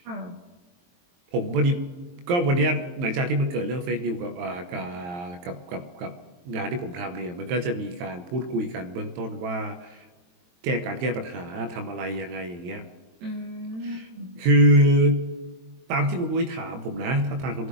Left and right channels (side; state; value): left; late; 23 ms